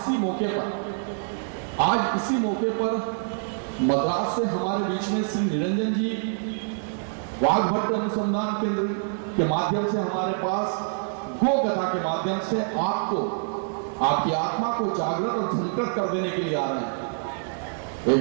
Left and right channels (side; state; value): left; silent; 61 dB below the other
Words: मौके पर मद्रास से हमारे बीच में श्री निरंजन जी वाघभट्ट अनुसंधान केंद्र के माध्यम से हमारे पास गो कथा के माध्यम से आपको आपकी आत्मा को जागृत और झंकृत कर देने के लिए आ रहे हैं।